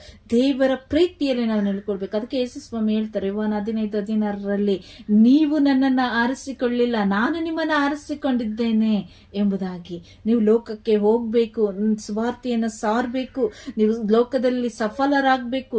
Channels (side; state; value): both; identical; correlation 1.00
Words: ದೇವರ ಪ್ರೀತಿಯಲ್ಲಿ ನಾವು ನೆಲೆಕೊಳ್ಬೇಕು. ಅದಕ್ಕೆ ಯೇಸುಸ್ವಾಮಿ ಹೇಳ್ತಾರೆ ಯೋಹಾನ 15:16 ನೀವು ನನ್ನನ್ನ ಆರಿಸಿಕೊಳ್ಳಿಲ್ಲ, ನಾನು ನಿಮ್ಮನ್ನ ಆರಿಸಿಕೊಂಡಿದ್ದೇನೆ ಎಂಬುದಾಗಿ. ನೀವು ಲೋಕಕ್ಕೆ ಹೋಗ್ಬೇಕು, ಸುವಾರ್ತೆಯನ್ನ ಸಾರಬೇಕು, ನೀವು ಲೋಕದಲ್ಲಿ ಸಫಲರಾಗಬೇಕು,